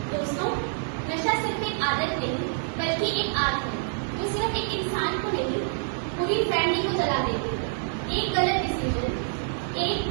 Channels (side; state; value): left; silent; digital silence